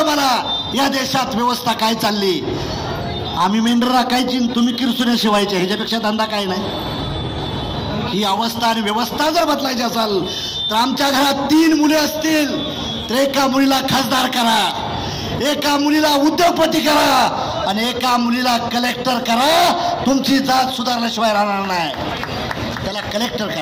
मला या देशात व्यवस्था काय चालली. आम्ही मेंढर राखायची, तुम्ही किरसुने शिवायचे, ह्याच्यापेक्षा धंदा काय नाही. ही अवस्था आणि व्यवस्था जर बदलायची असेल तर आमच्या घरात 3 मुले असतील तर एका मुलीला खासदार करा, एका मुलीला उद्योगपती करा आणि एका मुलीला कलेक्टर करा. तुमची जात सुधारल्याशिवाय राहणार नाही. त्याला कलेक्टर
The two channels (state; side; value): identical; both; correlation 1.00